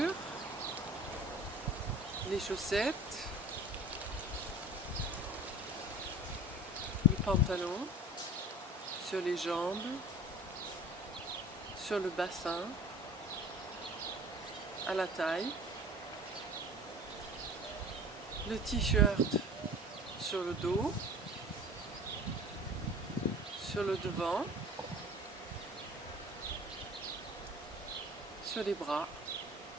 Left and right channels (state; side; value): normal; both; correlation 0.42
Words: les chaussettes, le pantalon, sur les jambes, sur le bassin, à la taille, le t-shirt sur le dos, sur le devant, sur les bras.